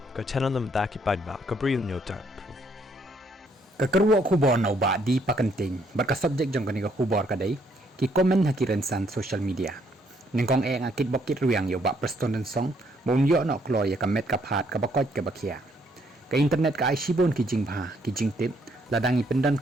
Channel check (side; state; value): both; normal; correlation 0.69